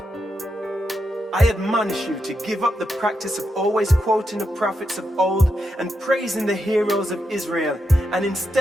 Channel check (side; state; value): both; normal; correlation 0.84